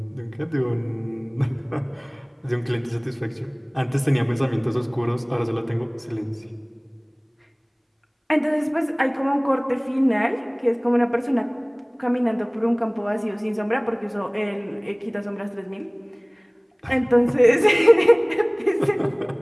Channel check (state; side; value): identical; both; correlation 1.00